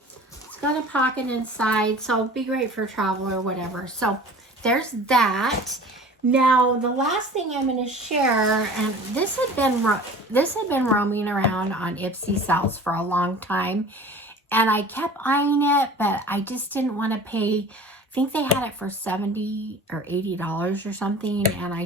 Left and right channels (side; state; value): both; normal; correlation 0.42